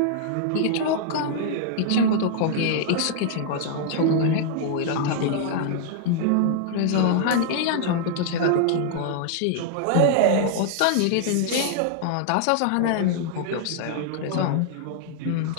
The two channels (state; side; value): different; both; correlation -0.01